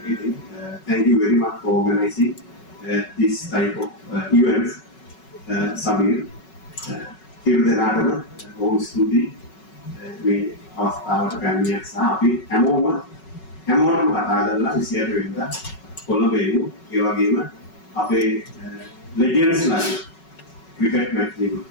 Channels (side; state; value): right; late; 5.3 ms